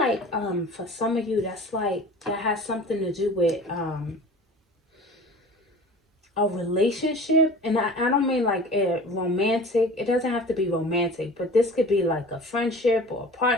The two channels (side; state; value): both; normal; correlation 0.41